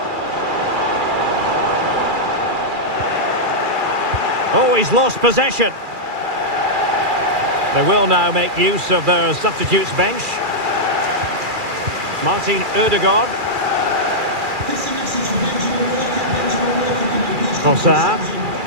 Oh, he's lost possession. They will now make use of their substitutes bench. Martin Ødegaard. This is a message from Benjamin Walker. Benjamin Walker, can you please Trossard.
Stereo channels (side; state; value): left; late; 2.4 ms